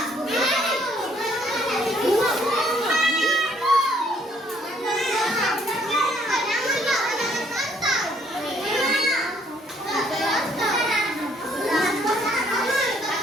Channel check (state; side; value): normal; both; correlation 0.65